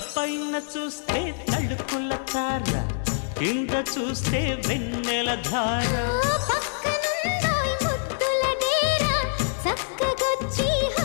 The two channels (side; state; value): right; silent; digital silence